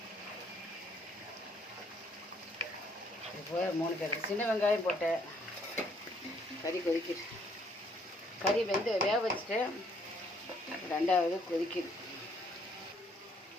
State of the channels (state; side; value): normal; both; correlation 0.66